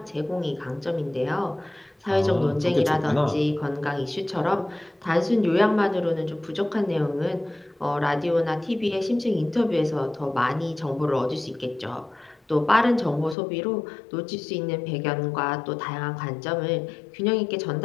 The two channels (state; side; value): drops out; right; at 13.4 s